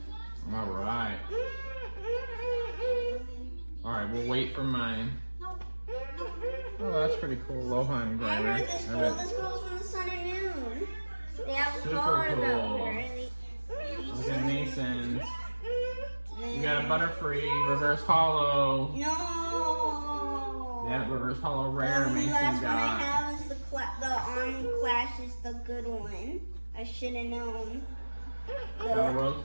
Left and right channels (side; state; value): both; inverted; correlation -1.00